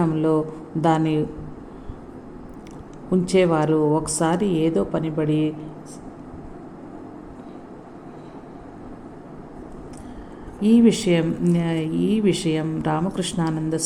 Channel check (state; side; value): identical; both; correlation 1.00